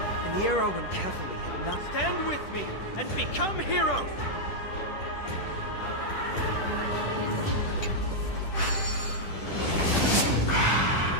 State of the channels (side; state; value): right; late; 10 ms